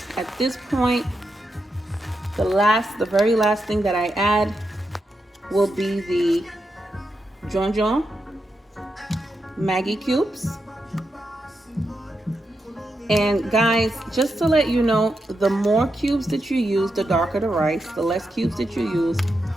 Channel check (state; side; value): normal; both; correlation 0.86